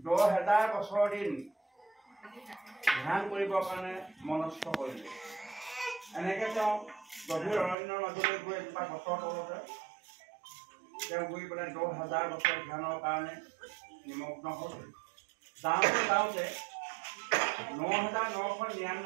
10,000 বছৰ দিন ধ্যান কৰিবৰ কাৰণে মনস্থ কৰিলে। এনেকে তেওঁ গভীৰ অৰণ্যৰ মাজলৈ গৈ এজোপা গছৰ তলতে তেওঁ গৈ পেলাই 10,000 বছৰ ধ্যানৰ কাৰণে নিমগ্ন হ'ল। যাওঁতে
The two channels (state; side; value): drops out; left; at 7.8 s